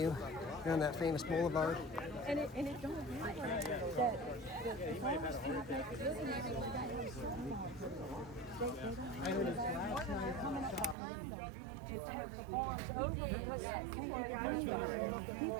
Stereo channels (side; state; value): left; drops out; at 11.0 s